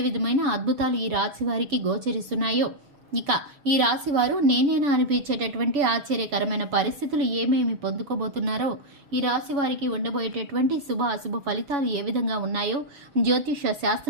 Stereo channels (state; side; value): late; left; 7.0 ms